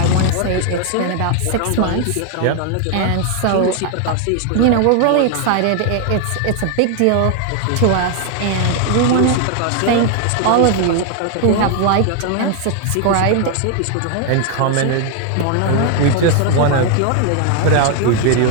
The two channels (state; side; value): different; both; correlation 0.01